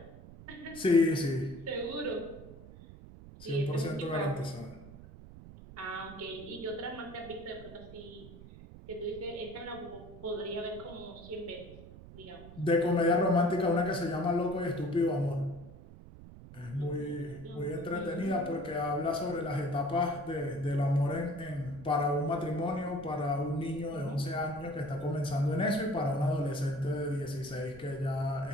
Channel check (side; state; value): right; noise; rumble, 16 dB below the sound